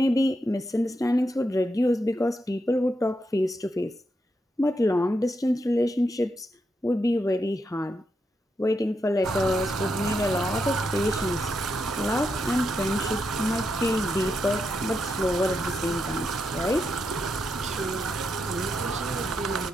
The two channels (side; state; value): both; normal; correlation 0.83